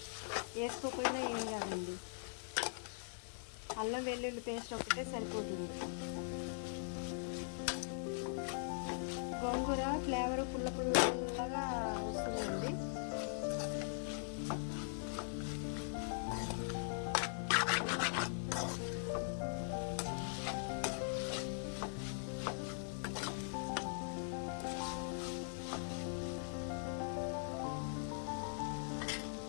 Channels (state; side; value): silent; right; digital silence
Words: వేసుకోకపోయినా ఏం కాదండి, అల్లం వెల్లుల్లి పేస్ట్ ఒకటే సరిపోతుంది. గోంగూర ఫ్లేవర్ పుల్ల పుల్లగా వస్తుందండి.